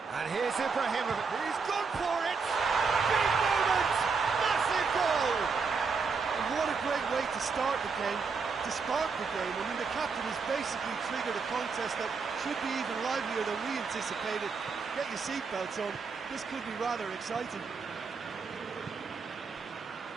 And here's Ibrahimovic. He's gone for it! Big moment! Massive goal! And what a great way to start the game, to spark the game. I mean, the captain has basically triggered a contest that should be even livelier than we anticipated. Get your seatbelts on. This could be rather exciting.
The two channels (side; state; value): left; quieter; 5.0 dB